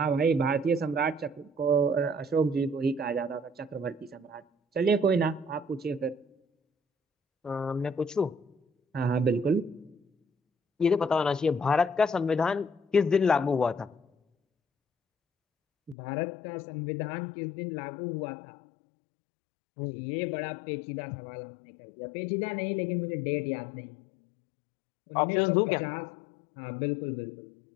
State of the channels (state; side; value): drops out; right; at 16.0 s